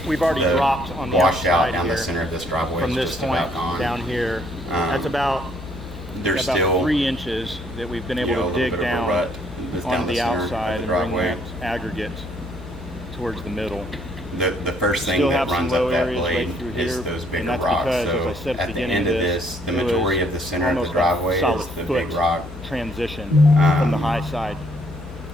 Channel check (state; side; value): normal; both; correlation 0.66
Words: we've already the dropped on the washout outside down here. the center of this driveway From is this just point about gone. down here, that's about There's still 3 inches that we've been able a to little dig bit of a down rut that's down on the center of outside the and bring driveway. that aggregate towards the middle. The first thing Still that have some runs low up that areas blade right through is here, those and bigger that's rocks. because, So as I said at the at the beginning end of of this, this, the it was majority of the center of the almost driveway a solid is the foot big rock. transition from the high side